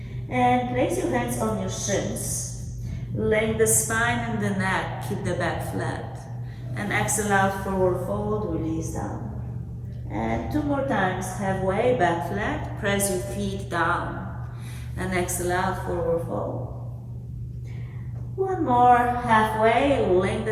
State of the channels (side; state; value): both; identical; correlation 1.00